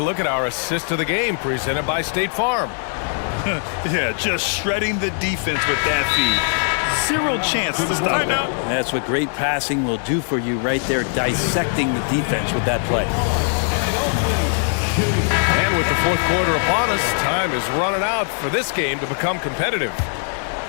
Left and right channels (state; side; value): silent; right; 60 dB below the other